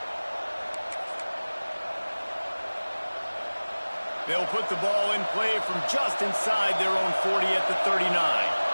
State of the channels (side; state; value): both; inverted; correlation -1.00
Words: They'll put the ball in play from just inside their own 40 at the 39.